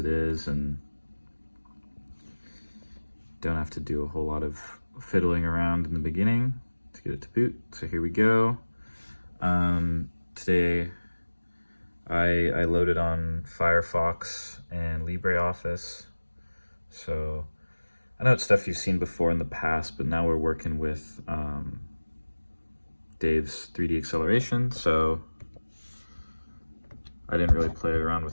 is and don't have to do a whole lot of fiddling around in the beginning to get it to boot. So here we go. Today I loaded on Firefox and LibreOffice. So I know it's stuff you've seen before in the past, but now we're working with Dave's 3D acceleration. So I didn't really play around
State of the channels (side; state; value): both; inverted; correlation -1.00